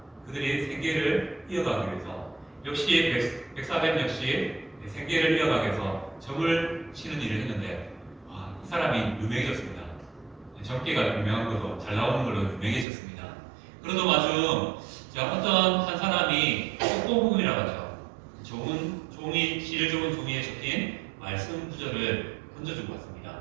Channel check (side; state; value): left; drops out; at 12.9 s